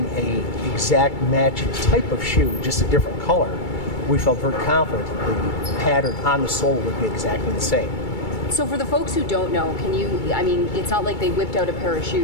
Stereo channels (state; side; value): late; right; 2.3 ms